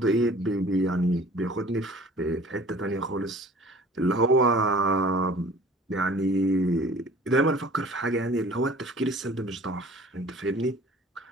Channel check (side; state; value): both; normal; correlation 0.48